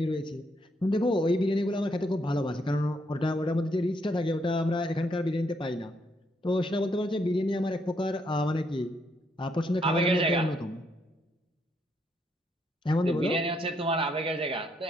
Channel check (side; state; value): both; normal; correlation 0.74